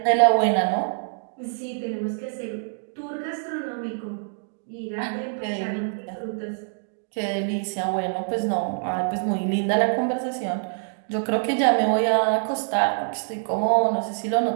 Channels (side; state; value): left; silent; digital silence